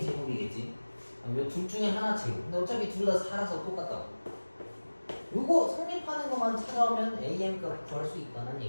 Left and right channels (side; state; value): both; inverted; correlation -1.00